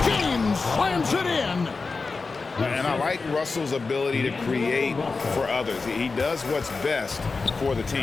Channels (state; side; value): quieter; right; 4.2 dB